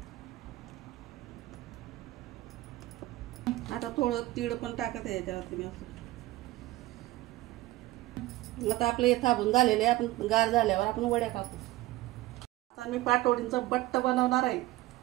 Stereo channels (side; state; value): left; quieter; 17.6 dB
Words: आता थोडं तीळ पण टाकत आहे याच्यावरती मी असं। आता आपले हे थांबून झालेले आहे, आपण गार झाल्यावर आपण वड्या कापू। आता मी पाटोळींचं बट्ट बनवणार आहे।